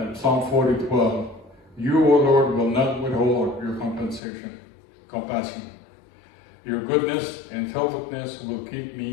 Psalm 40:12. You, O Lord, will not withhold your compassion. Your goodness and faithfulness will keep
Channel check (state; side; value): drops out; right; at 4.2 s